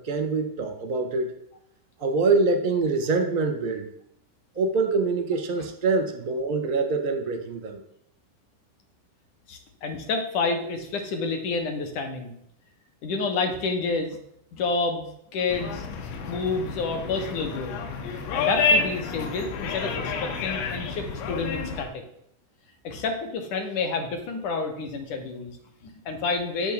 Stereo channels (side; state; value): right; late; 10 ms